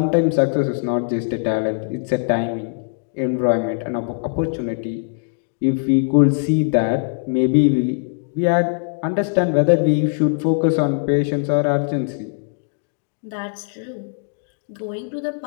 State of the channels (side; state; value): right; silent; digital silence